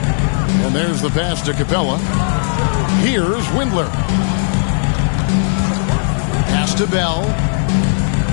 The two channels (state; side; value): silent; right; digital silence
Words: And there's the pass to Capella. Here's Windler. Pass to Bell.